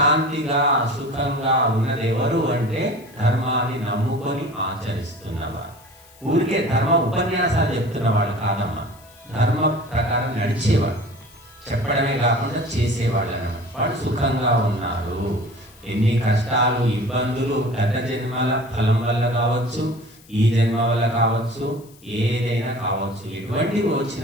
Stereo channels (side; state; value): left; noise; hiss, 26 dB below the sound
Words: సుఖంగా ఉన్నది ఎవరు అంటే ధర్మాన్ని నమ్ముకొని ఆచరిస్తున్నవారు. ఊరికే ధర్మ ఉపన్యాసాలు చెప్తున్న వాళ్ళు కాదమ్మా, ధర్మ ప్రకారం నడిచేవాడు, చెప్పడమే కాకుండా చేసేవాళ్ళు అన్నమాట. వాళ్ళు సుఖంగా ఉన్నారు. ఎన్ని కష్టాలు ఇబ్బందులు గత జన్మల ఫలం వల్ల కావచ్చు, ఈ జన్మ వల్ల కావచ్చు, ఏదైనా కావచ్చు, ఎటువంటివి